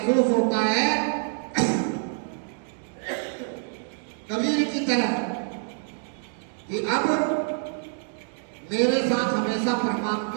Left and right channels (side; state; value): left; silent; digital silence